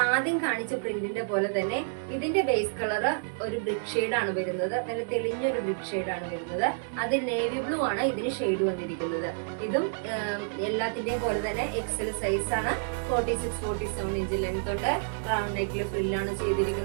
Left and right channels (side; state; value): left; silent; digital silence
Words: ആദ്യം കാണിച്ച പ്രിന്റിന്റെ പോലെ തന്നെ ഇതിന്റെ ബേസ് കളർ ഒരു ബ്രിക്ക് ഷെയ്ഡ് ആണ് വരുന്നത്. നല്ല തെളിഞ്ഞൊരു ബ്രിക്ക് ഷെയ്ഡ് ആണ് വരുന്നത്. അതിൽ നേവി ബ്ലൂ ആണ് ഇതിന് ഷെയ്ഡ് വന്നിരിക്കുന്നത്. ഇതും എല്ലാത്തിന്റെയും പോലെ തന്നെ എക്സൽ സൈസ് ആണ്. 46-47 ഇഞ്ച് ലെങ്ത് ഉണ്ട്. റൗണ്ട് നെക്കിൽ ഫ്രില്ലാണ്